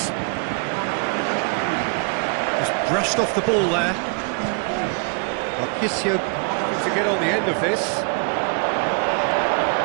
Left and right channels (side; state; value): left; quieter; 37.6 dB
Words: Just brushed off the ball there. Marchisio looking to get on the end of this.